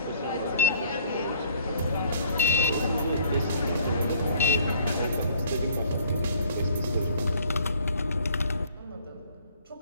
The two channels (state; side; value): inverted; both; correlation -0.57